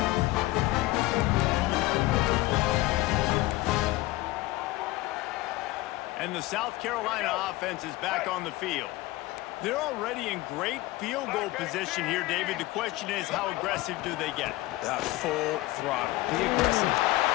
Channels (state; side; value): quieter; right; 18.6 dB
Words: And the South Carolina offense is back on the field. They're already in great field goal position here, David. The question is, how aggressive do they get? Full throttle. Be aggressive.